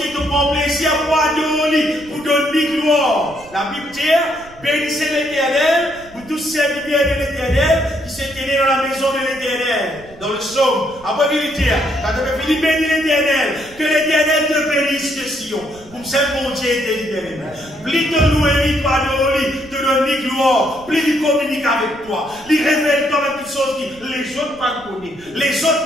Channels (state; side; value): noise; right; rumble, 23 dB below the sound